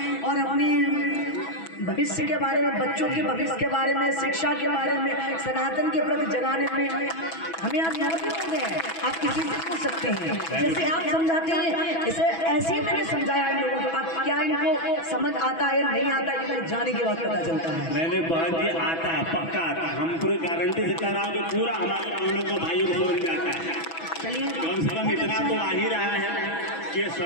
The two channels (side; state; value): right; late; 6.1 ms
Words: और अपनी भविष्य के बारे में, बच्चों के भविष्य के बारे में, शिक्षा के बारे में, सनातन के प्रति जगाने में हमें आज 9 दिन हो गए। आप किसी से पूछ सकते हैं, जैसे आप समझाते हैं इसे ऐसे ही मैंने समझाया इन लोगों को। अब क्या इनको समझ आता है नहीं आता है, जाने के बाद पता चलता है। मैंने बहन जी आता है, पक्का आता है, हम पूरी गारंटी से कह रहा हूँ कि पूरा हमारे बहनों को भाइयों को समझ में आता है। चलिए कम से कम इतना तो आ ही रहा है कि